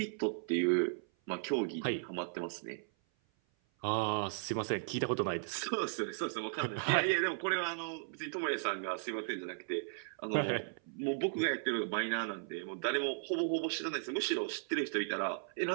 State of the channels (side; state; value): left; silent; 54 dB below the other